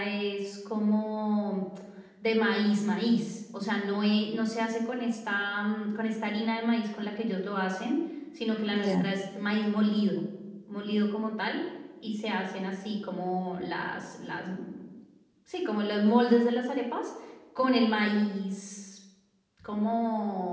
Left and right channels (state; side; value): identical; both; correlation 1.00